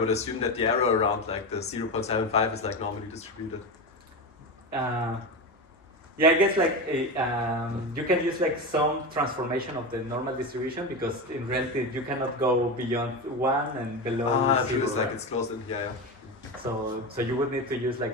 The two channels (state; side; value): normal; both; correlation 0.19